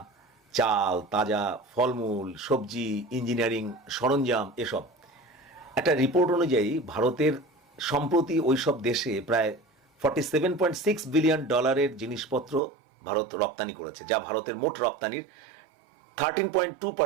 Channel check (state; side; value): drops out; left; at 12.6 s